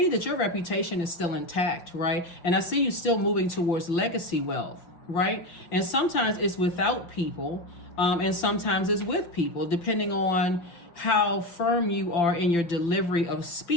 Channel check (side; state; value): right; late; 5.9 ms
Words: that your reputation is still intact, right? And I see you still moving towards legacy wealth, right? And sometimes it's without people. And sometimes it's with people, depending on how firm you are in your delivery of